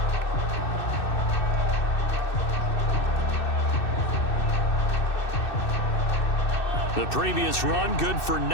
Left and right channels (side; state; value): right; late; 2.6 ms